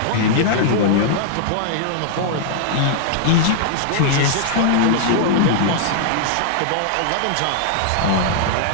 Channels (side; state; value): both; different; correlation -0.01